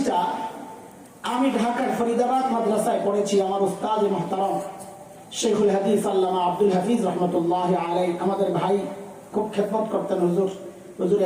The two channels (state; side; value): identical; both; correlation 1.00